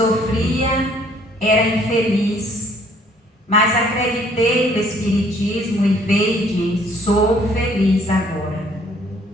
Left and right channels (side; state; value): both; normal; correlation 0.61